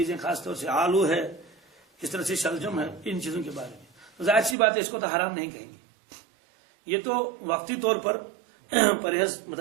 خاص طور سے آلو ہے، کس طرح سے شلجم ہے، ان چیزوں کے بارے میں ظاہر سی بات ہے اس کو تو حرام نہیں کہیں گے. یہ تو وقتی طور پر پرہیز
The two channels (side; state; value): left; drops out; at 4.5 s